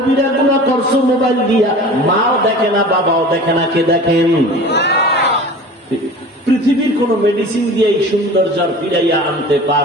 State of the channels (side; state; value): both; normal; correlation 0.39